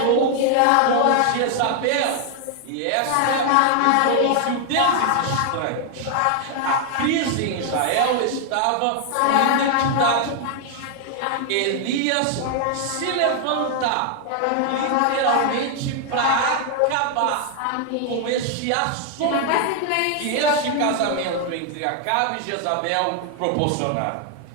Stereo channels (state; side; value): different; both; correlation 0.00